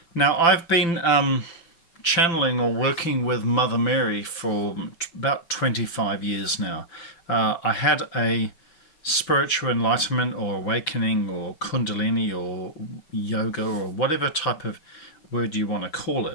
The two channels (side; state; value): right; late; 5.9 ms